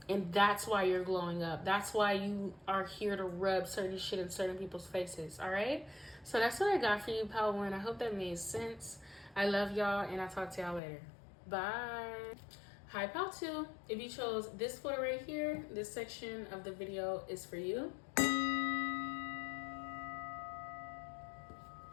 And that's why you're glowing up. That's why you are here to rub certain shit in certain people's faces. All right, so that's what I got for you, Pal1. I hope that made sense. I love y'all, and I'll talk to y'all later. Bye. Hi, Pal2. If you chose this photo right here, this section of the video is for you.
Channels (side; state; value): right; drops out; at 10.8 s